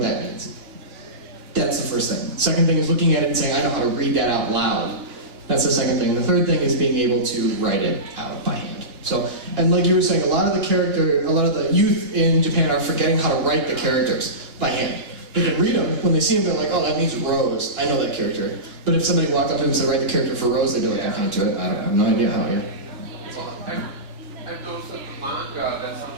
that means. That's the first thing. Second thing is looking at it and saying, I know how to read that out loud. That's the second thing. And the third thing is being able to write it out by hand. So, and like you were saying, a lot of the youth in Japan are forgetting how to write the characters by hand. They can read them. When they see them, they're like, oh, that means Rose. I know that character. But if somebody walked up to them and said, write the character for Rose, they'd be like, I can't do it. I have no idea how, yeah. Well, I've noticed that the manga, that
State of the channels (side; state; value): left; late; 2.9 ms